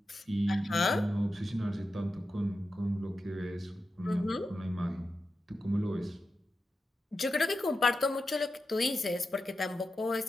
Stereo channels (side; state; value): both; normal; correlation 0.90